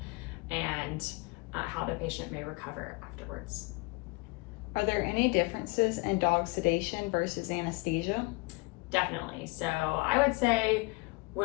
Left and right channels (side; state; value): right; quieter; 27.0 dB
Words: and how the patient may recover afterwards. Are there any differences in dog sedation versus anesthesia? Definitely. So I would say